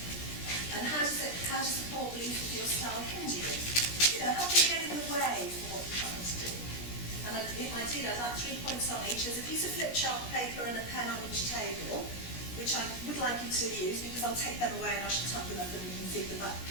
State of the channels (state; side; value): late; right; 17 ms